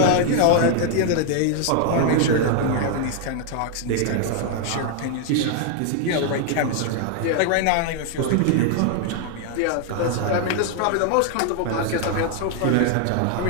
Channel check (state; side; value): different; both; correlation 0.00